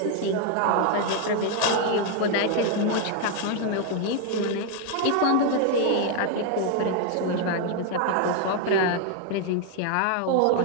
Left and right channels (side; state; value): both; different; correlation 0.00